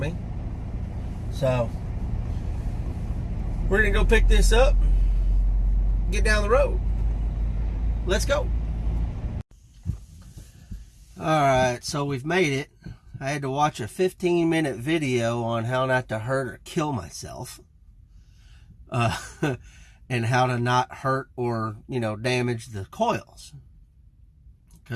mean? So we're gonna go pick this up, get down the road. Let's go. Alright, so we've made it. I had to watch a 15-minute video on how not to hurt or kill myself. And how to not hurt or, damage the coils.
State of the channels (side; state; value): both; identical; correlation 1.00